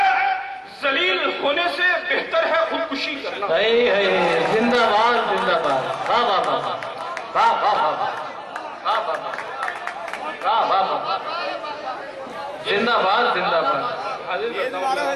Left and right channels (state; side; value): identical; both; correlation 1.00